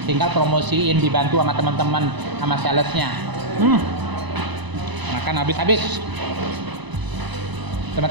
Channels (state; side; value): late; left; 1.0 ms